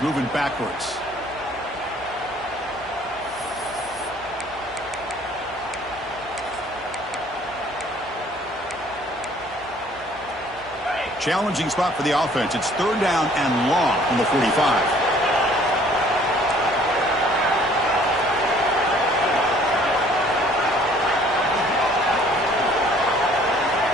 moving backwards. Challenging spot for the offense. It's 3rd down and long from the 45.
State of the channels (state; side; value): noise; left; hum, 25 dB below the sound